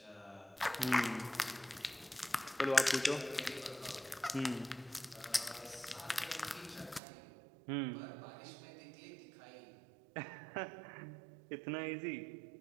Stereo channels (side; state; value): left; drops out; at 7.0 s